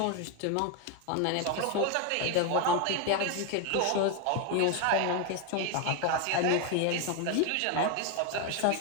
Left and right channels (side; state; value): both; different; correlation 0.02